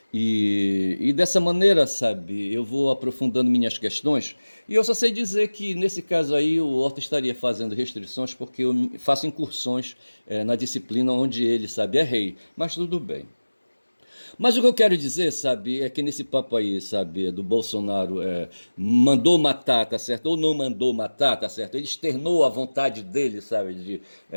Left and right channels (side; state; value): both; inverted; correlation -1.00